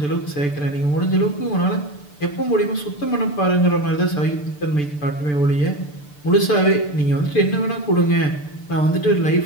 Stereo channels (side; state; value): right; late; 6.8 ms